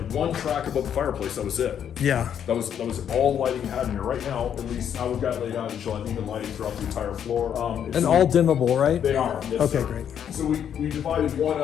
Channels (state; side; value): quieter; right; 8.9 dB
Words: one track above the fireplace, that was it. Yeah. That was all lighting you had in here. Right now, at least how we've got it laid out, you'll have even lighting throughout the entire floor. And all dimmable, right? They are, yes, Okay, sir. great. So we divided one